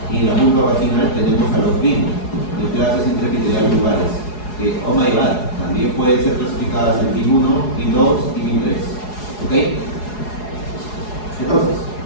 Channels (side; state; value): right; late; 4.8 ms